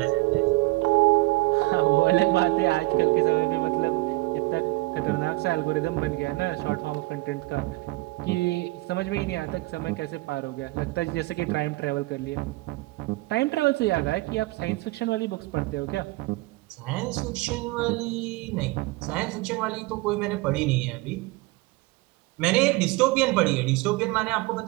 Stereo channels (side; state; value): left; quieter; 22.1 dB